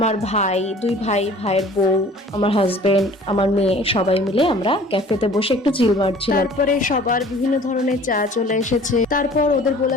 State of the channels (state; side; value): normal; both; correlation 0.49